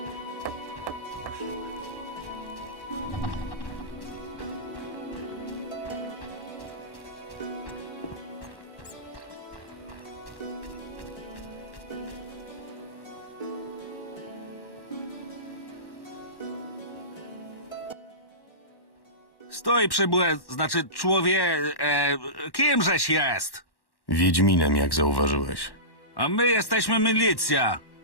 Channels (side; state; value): right; late; 1.1 ms